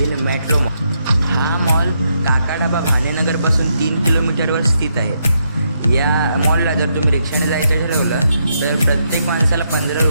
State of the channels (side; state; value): both; inverted; correlation -0.79